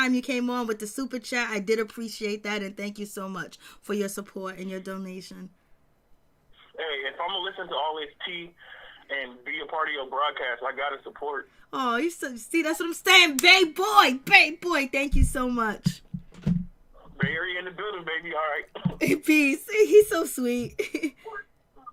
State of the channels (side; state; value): both; identical; correlation 1.00